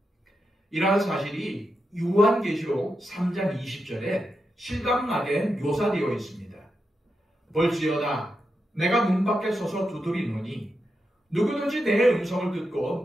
이러한 사실이 요한계시록 3장 20절에 실감나게 묘사되어 있습니다. 볼지어다 내가 문 밖에 서서 두드리노니 누구든지 내 음성을 듣고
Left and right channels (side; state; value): both; normal; correlation 0.87